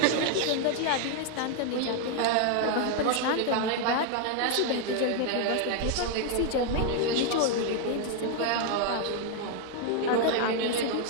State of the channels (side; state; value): both; different; correlation 0.00